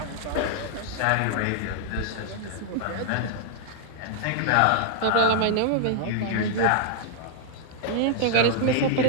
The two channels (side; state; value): both; different; correlation -0.01